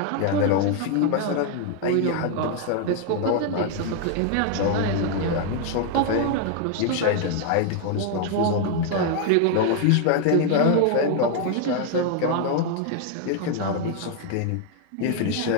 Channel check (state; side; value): different; both; correlation 0.00